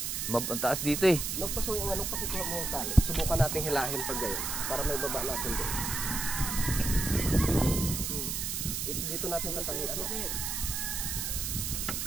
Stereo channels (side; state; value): right; noise; hiss, 2 dB below the sound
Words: mataas dito eh. Nagpaso yung anong pakikuha mo ang tali. Subukan natin hilahin pag gayon. Para may baba natin doon. dito natin tatanggihan.